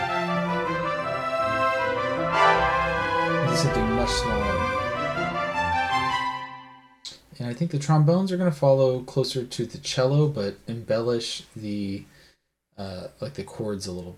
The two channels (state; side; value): identical; both; correlation 1.00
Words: into something much smaller. And I think the trombones are going to follow closer to the cello, but embellish the like the chords a little